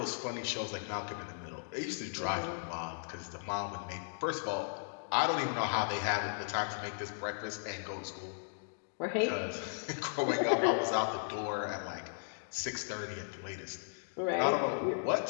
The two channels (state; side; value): silent; right; digital silence